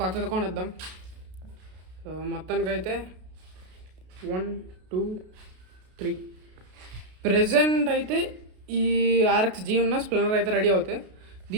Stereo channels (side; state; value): left; late; 33 ms